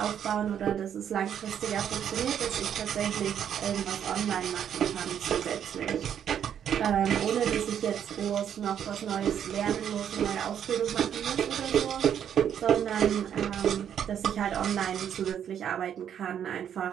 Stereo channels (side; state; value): left; quieter; 9.1 dB